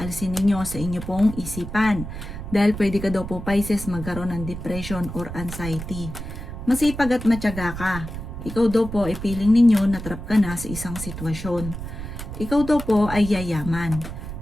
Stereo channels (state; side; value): noise; right; rumble, 9 dB below the sound